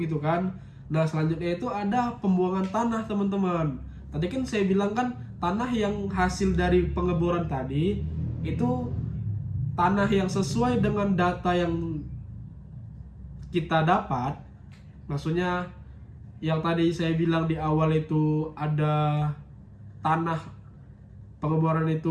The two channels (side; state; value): both; identical; correlation 1.00